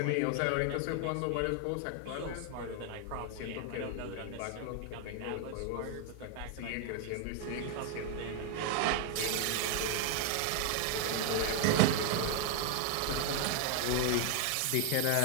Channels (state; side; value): different; both; correlation 0.00